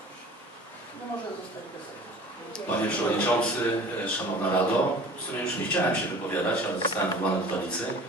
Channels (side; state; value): both; normal; correlation 0.44